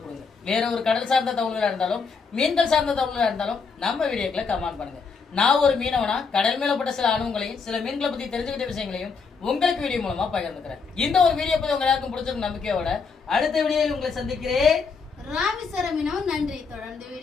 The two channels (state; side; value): quieter; right; 5.1 dB